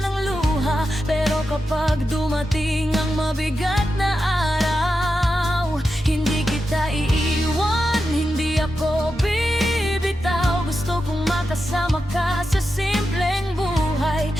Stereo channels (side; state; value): both; normal; correlation 0.89